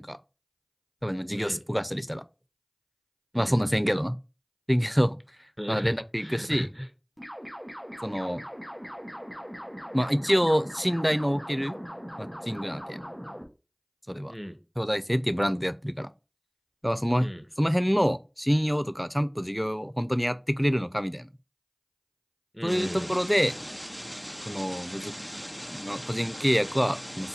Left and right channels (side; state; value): both; identical; correlation 1.00